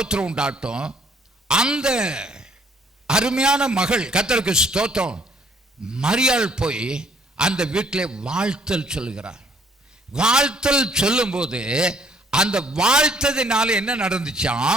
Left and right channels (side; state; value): both; normal; correlation 0.62